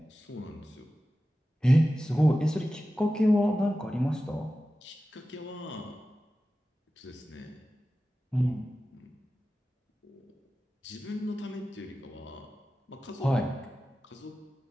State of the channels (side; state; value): both; normal; correlation 0.94